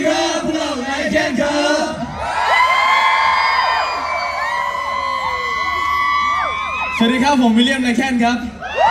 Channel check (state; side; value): identical; both; correlation 1.00